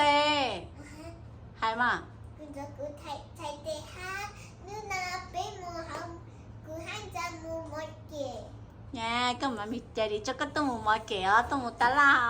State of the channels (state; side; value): identical; both; correlation 1.00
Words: hay mà nha cơ mà mình chạy đi cho cái tôm một kẻ tôm một tá